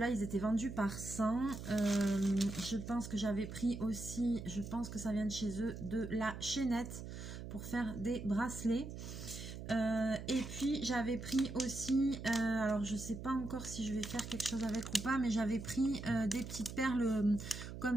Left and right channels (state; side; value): noise; right; hum, 9 dB below the sound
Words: ils étaient vendus par 100. Je pense que j'avais pris aussi, je pense que ça vient de chez eux, de la chaînette pour faire des bracelets. Et puis, j'avais pris aussi, alors je ne sais pas encore si je vais faire quelque chose avec ou pas, mais j'avais pris des petites perles